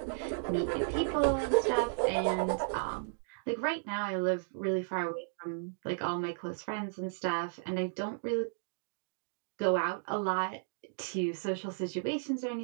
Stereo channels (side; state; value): left; silent; digital silence